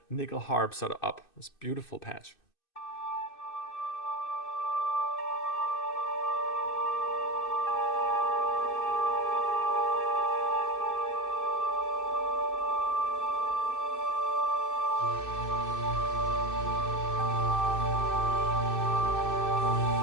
nickel harp sort of up. This beautiful patch.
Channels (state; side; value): late; right; 2.6 ms